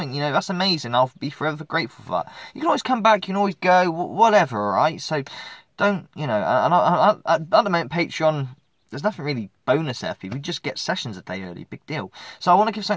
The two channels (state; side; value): identical; both; correlation 1.00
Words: You know, that's amazing. I'll be forever grateful for that. You can always come back. You can always go. Whatever. All right. So don't, you know. And at the moment, Patreon. There's nothing really bonus there for you. We just get sessions a day early. Big deal. So I want to give